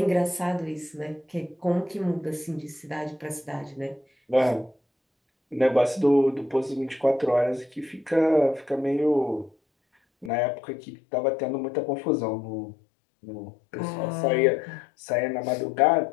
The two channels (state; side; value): drops out; right; at 10.3 s